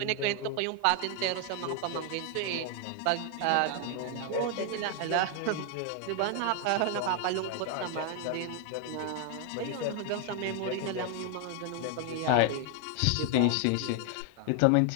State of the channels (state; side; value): different; both; correlation 0.00